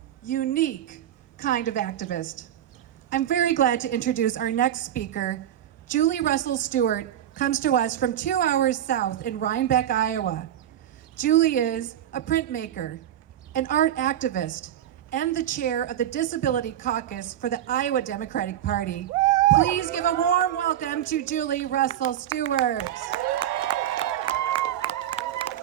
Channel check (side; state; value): left; quieter; 11.3 dB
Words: unique kind of activist. I'm very glad to introduce our next speaker. Julie Russell-Steuart comes to us from 2 hours south in Rhinebeck, Iowa. Julie is a printmaker, an art activist, and the chair of the Disability Caucus for the Iowa Democratic Party. Please give a warm welcome to Julie Russell-Steuart.